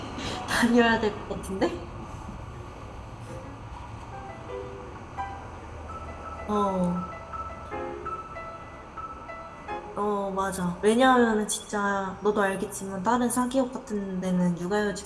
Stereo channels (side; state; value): both; identical; correlation 1.00